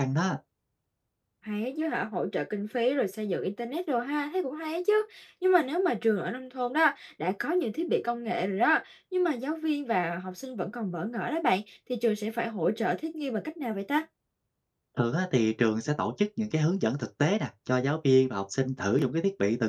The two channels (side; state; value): both; identical; correlation 1.00